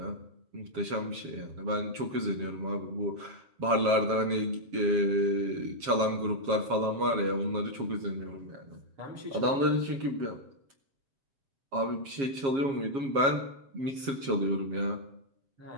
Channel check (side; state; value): left; late; 7.3 ms